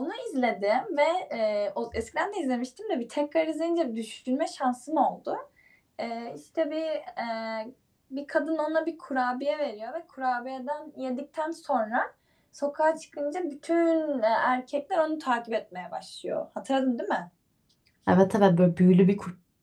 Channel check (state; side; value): identical; both; correlation 1.00